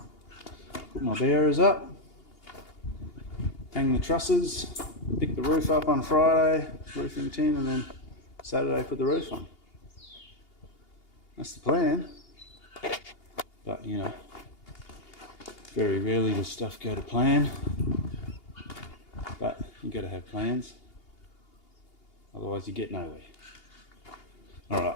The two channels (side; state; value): right; late; 2.8 ms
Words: put my bearers up, hang the trusses, pick the roof up on Friday, roofing tin, and then Saturday put the roof on. That's the plan. But you know, very rarely does stuff go to plan, but you got to have plans, otherwise you get nowhere. Alright,